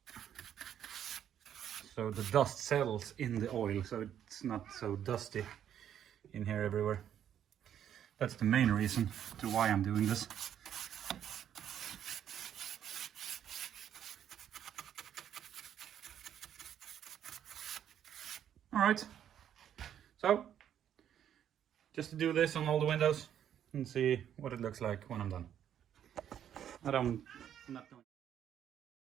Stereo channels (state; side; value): quieter; left; 9.8 dB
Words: so the dust settles in the oil, so it's not so dusty in here everywhere. That's the main reason to why I'm doing this. Alright, so just to do this on all the windows and see what it looks like when I'm done. I'm not going.